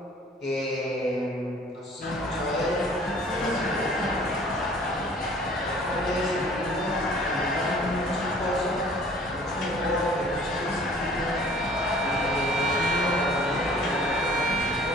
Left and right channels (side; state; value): both; normal; correlation 0.52